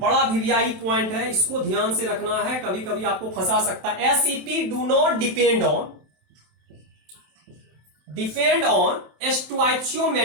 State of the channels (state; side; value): late; left; 27 ms